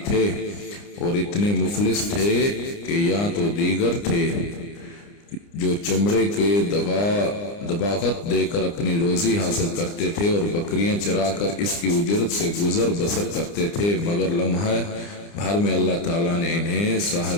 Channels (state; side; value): late; right; 29 ms